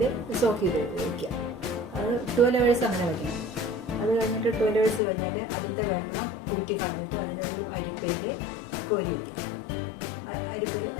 സോക്ക് ചെയ്ത് വയ്ക്കുക. അത് 12 hours അങ്ങനെ വയ്ക്കണം. അത് കഴിഞ്ഞിട്ട് 12 hours കഴിഞ്ഞാൽ അതിൻ്റെ വെള്ളം ഊറ്റി കളഞ്ഞിട്ട് അതിനൊരു അരിപ്പയിൽ കോരി വയ്ക്കുക. അരിപ്പിൽ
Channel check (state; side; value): drops out; right; at 5.0 s